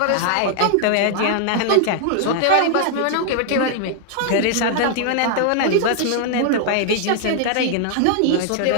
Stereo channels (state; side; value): different; both; correlation 0.00